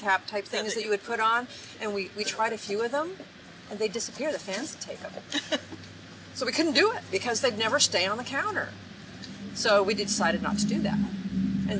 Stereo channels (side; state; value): both; identical; correlation 1.00